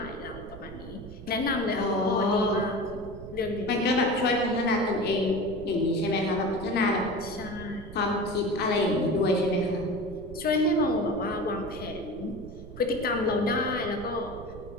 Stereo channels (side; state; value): right; noise; rumble, 14 dB below the sound